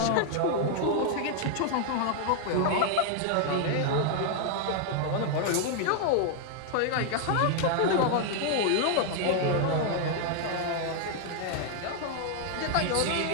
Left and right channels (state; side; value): different; both; correlation 0.00